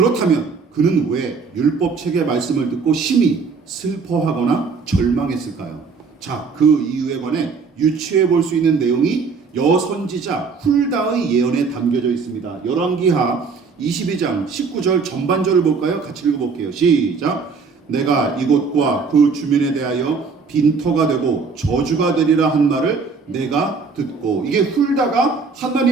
그는 왜 율법책의 말씀을 듣고 심히 슬퍼하거나 절망했을까요? 자, 그 이유에 관해 유추해 볼 수 있는 내용이 여선지자 훌다의 예언에 담겨져 있습니다. 열왕기하 22장 19절 전반절을 볼까요? 같이 읽어볼게요. 시작. 내가 이곳과 그 주민에 대하여 빈터가 되고 저주가 되리라 한 말을 내가 듣고, 이게 훌다가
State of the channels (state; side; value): quieter; left; 5.0 dB